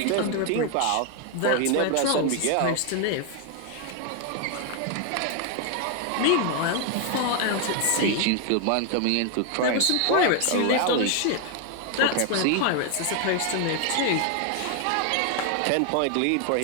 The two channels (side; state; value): both; different; correlation 0.01